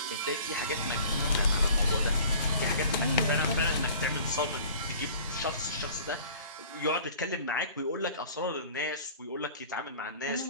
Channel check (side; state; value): both; inverted; correlation -0.46